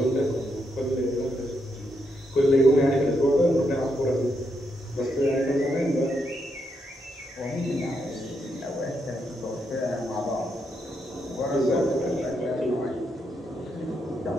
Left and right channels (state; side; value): normal; both; correlation 0.80